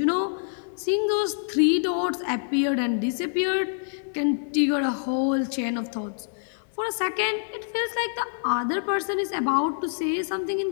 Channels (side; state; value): right; silent; digital silence